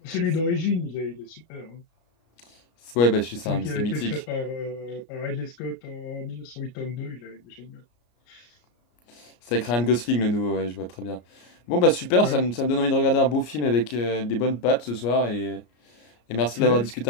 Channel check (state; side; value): late; right; 33 ms